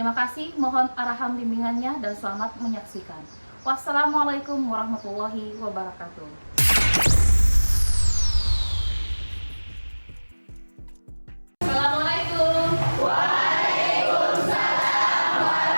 kasih, mohon arahan bimbingannya dan selamat menyaksikan. Wassalamualaikum warahmatullahi wabarakatuh. Assalamualaikum.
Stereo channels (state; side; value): inverted; both; correlation -1.00